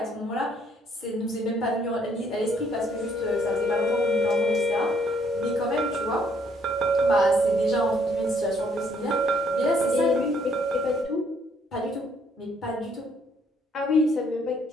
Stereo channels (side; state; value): both; normal; correlation 0.67